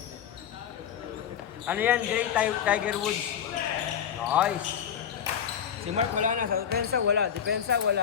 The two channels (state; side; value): quieter; right; 8.6 dB